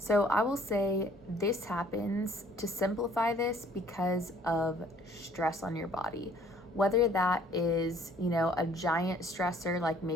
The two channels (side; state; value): both; normal; correlation 0.58